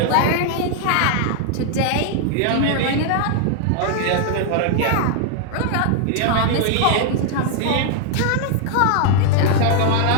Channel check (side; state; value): both; different; correlation 0.00